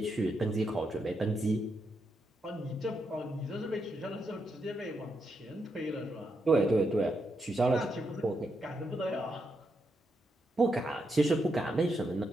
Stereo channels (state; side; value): normal; both; correlation 0.82